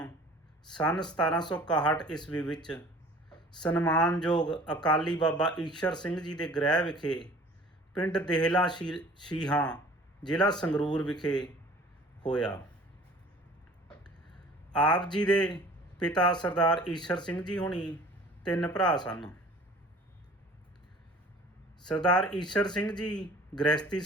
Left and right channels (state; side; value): normal; both; correlation 0.48